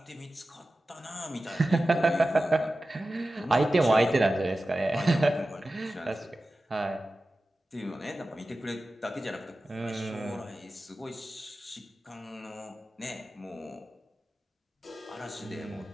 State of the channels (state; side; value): normal; both; correlation 0.95